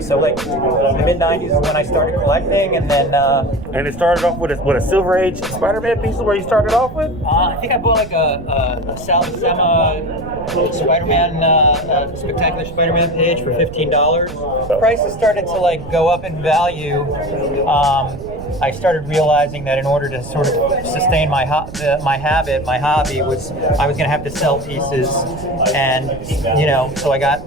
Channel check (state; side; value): noise; right; rumble, 13 dB below the sound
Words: like the mid '90s is when I started collecting, and then And it started off with a Silver Age Spider-Man piece where you started off with? I think I bought like a Sal Buscema Spider-Man, Spectacular Spider-Man page for $15. Prices started to like go up in value. I started realizing that in order to sort of sustain my hobby was I was going to have to sell pieces, and you know, so I got